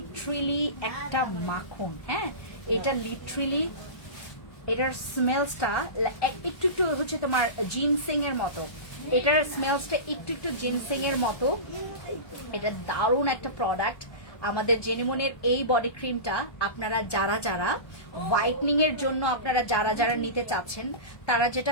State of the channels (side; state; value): right; late; 1.2 ms